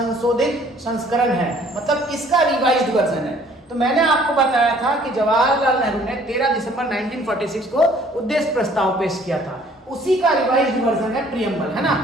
संस्करण है, मतलब किसका रिवाइज्ड वर्जन है? तो मैंने आपको बताया था कि जवाहरलाल नेहरू ने 13 दिसंबर 1946 को उद्देश्य प्रस्ताव पेश किया था, उसी का रिवाइज्ड वर्जन है प्रियम्बल, है ना।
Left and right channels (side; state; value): both; normal; correlation 0.57